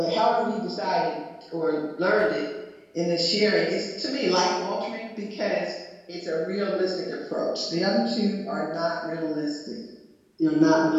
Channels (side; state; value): both; identical; correlation 1.00